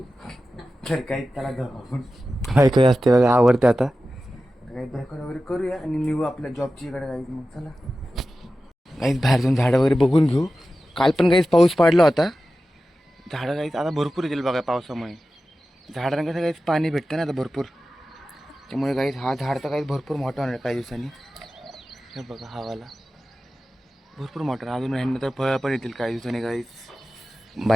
तर काही त्याला जाऊ बायको असते बघा, आवडते आता। काही ब्रेकफास्ट वगैरे करूया आणि निघू आपल्या जॉबची इकडे गाईज। मग चला गाईज बाहेर जाऊन झाडं वगैरे बघून घेऊ। काल पण गाईज पाऊस पडला होता, झाडं गाईज आता भरपूर येतील बघा पावसामुळे। झाडांना कसं गाईज पाणी भेटतं ना आता भरपूर, त्यामुळे गाईज हा झाड तर गाईज भरपूर मोठा होणार काही दिवसांनी। हे बघा हवाला भरपूर मोठा, अजून ह्यांना तर फळं पण येतील काही दिवसांनी गाईज।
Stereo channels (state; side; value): normal; both; correlation 0.94